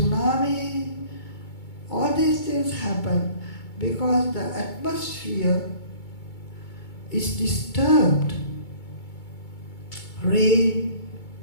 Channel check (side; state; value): right; late; 2.2 ms